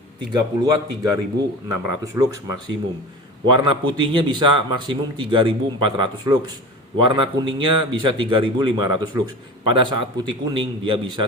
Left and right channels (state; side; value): normal; both; correlation 0.33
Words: 30 watt 3600 lux maksimum. Warna putihnya bisa maksimum 3400 lux. Warna kuningnya bisa 3500 lux. Pada saat putih kuning dia